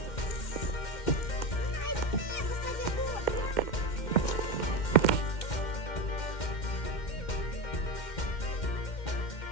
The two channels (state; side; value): late; right; 2.1 ms